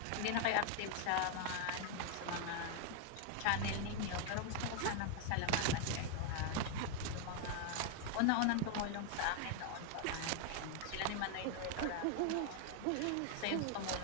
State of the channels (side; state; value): both; different; correlation 0.00